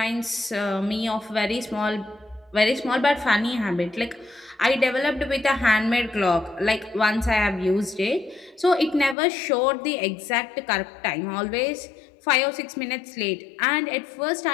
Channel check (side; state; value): right; drops out; at 9.2 s